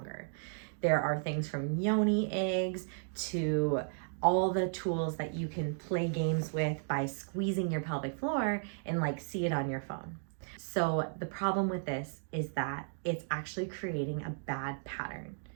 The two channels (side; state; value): left; silent; digital silence